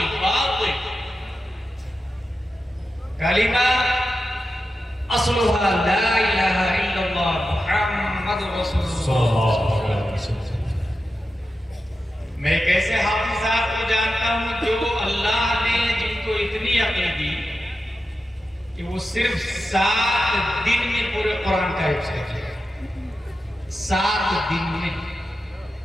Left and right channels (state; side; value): normal; both; correlation 0.91